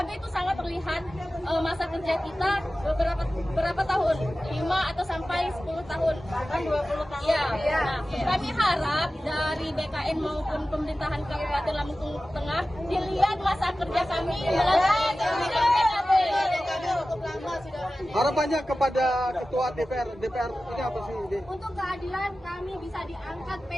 itu sangat terlihat masa kerja kita berapa tahun, 5 atau sampai 10 tahun, bahkan 20 tahun. Ya. Nah, kami harap dari BKN maupun pemerintahan Kabupaten Lampung Tengah dilihat masa kerja kami melalui SIM PKB. Harapannya kepada Ketua DPR ini apa sih? Untuk keadilan kami bisa diangkat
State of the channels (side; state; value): both; normal; correlation 0.95